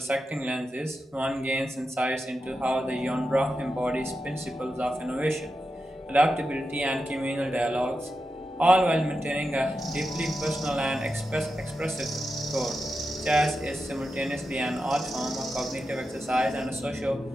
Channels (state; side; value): normal; both; correlation 0.89